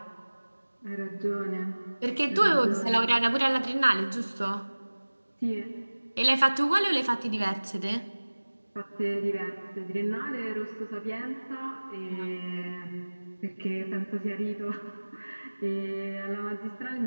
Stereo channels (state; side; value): inverted; both; correlation -1.00